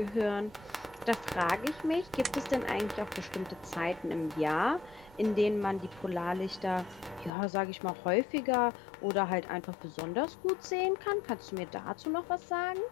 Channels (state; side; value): drops out; right; at 7.3 s